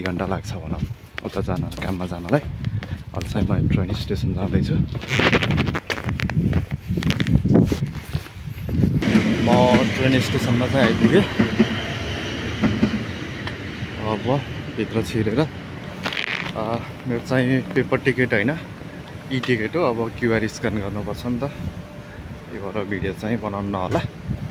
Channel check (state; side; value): identical; both; correlation 1.00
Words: घन्टा लाग्छ भनौँ उता जान, काममा जानलाई। अहिले चाहिँ म ट्रेन स्टेसन जाँदैछु। म ट्रेन स्टेसनमा चाहिँ आइपुगेँ। अब भित्र छिरेर मेरो चाहिँ पेपर टिकट होइन, ई टिकट हो। अब क्युआर स्क्यान गर्नुपर्छ नि त, यो भएर भिडियो चाहिँ बनाउनु नहोला।